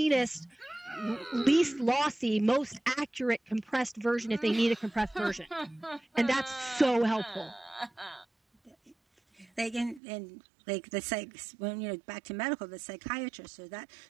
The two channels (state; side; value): drops out; left; at 10.0 s